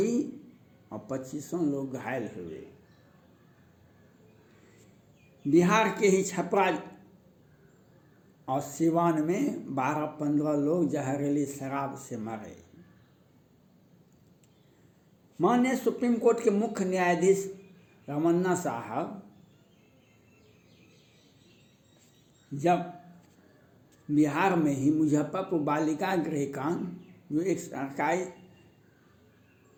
और 25 लोग घायल हुए। बिहार के ही छपरा और सिवान में 12-15 लोग जहरीली शराब से मरे। माननीय सुप्रीम कोर्ट के मुख्य न्यायाधीश रमन्ना साहब जब बिहार में ही मुजफ्फरपुर बालिका गृह कांड, जो एक सरकारी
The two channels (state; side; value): identical; both; correlation 1.00